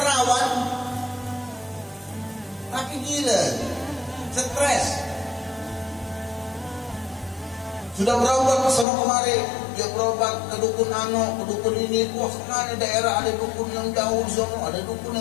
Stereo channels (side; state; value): right; drops out; at 8.8 s